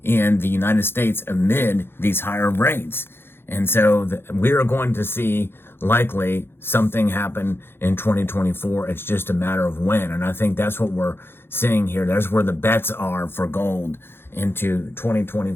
in the United States amid these higher rates. And so we are going to see likely something happen in 2024. It's just a matter of when. And I think that's what we're seeing here. That's where the bets are for gold into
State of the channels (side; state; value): right; late; 0.11 ms